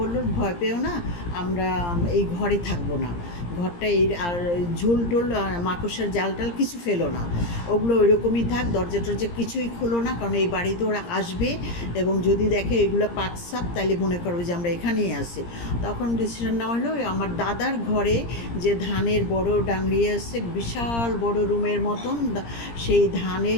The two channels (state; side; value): late; right; 17 ms